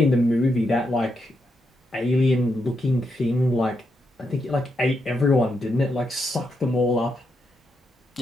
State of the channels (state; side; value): normal; both; correlation 0.82